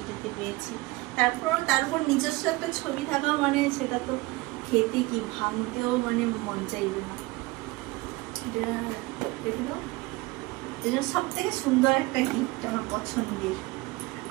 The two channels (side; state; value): left; quieter; 21.9 dB